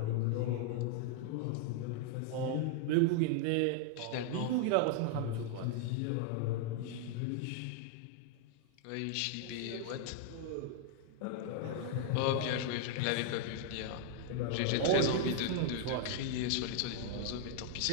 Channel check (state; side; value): different; both; correlation 0.00